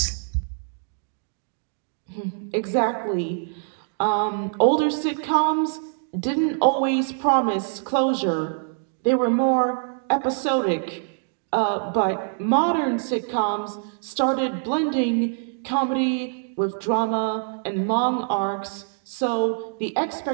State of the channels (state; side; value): silent; left; digital silence